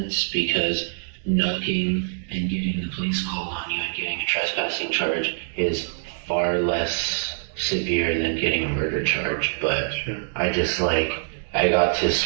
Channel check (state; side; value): silent; left; digital silence